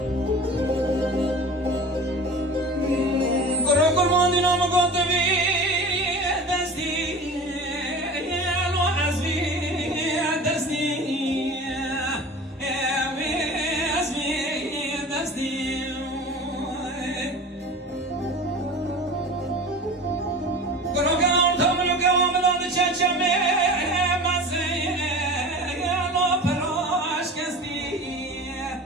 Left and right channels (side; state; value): both; normal; correlation 0.36